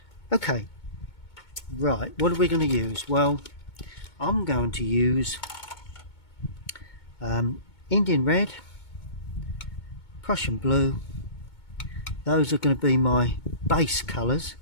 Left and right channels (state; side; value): late; right; 2.2 ms